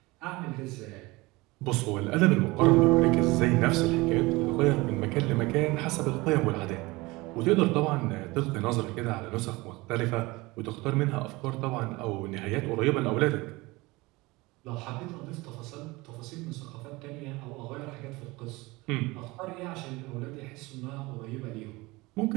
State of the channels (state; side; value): quieter; left; 22.3 dB